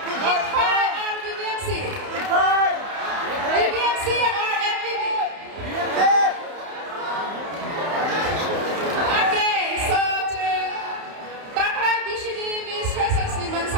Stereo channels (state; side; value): late; left; 31 ms